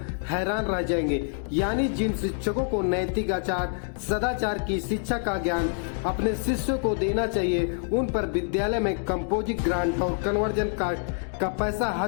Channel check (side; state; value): right; silent; 60 dB below the other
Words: हैरान रह जाएंगे। यानी जिन शिक्षकों को नैतिक आचार सदाचार की शिक्षा का ज्ञान अपने शिष्यों को देना चाहिए, उन पर विद्यालय में कंपोजिट ग्रांट और कन्वर्जन कास्ट का पैसा